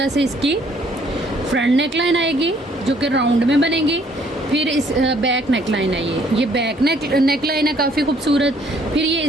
से इसकी फ्रंट नेक लाइन आएगी जो कि राउंड में बनेगी। फिर इस बैक नेक लाइन है, ये बैक नेक लाइन है काफ़ी खूबसूरत। फिर ये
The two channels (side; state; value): both; normal; correlation 0.63